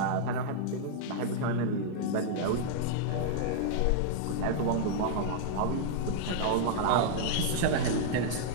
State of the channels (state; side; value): different; both; correlation -0.01